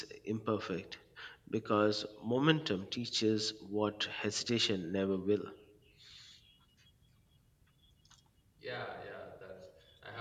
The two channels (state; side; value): identical; both; correlation 1.00